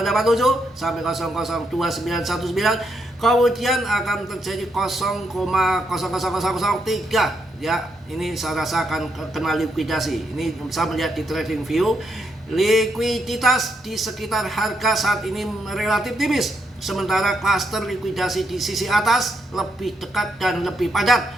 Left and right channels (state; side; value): normal; both; correlation 0.79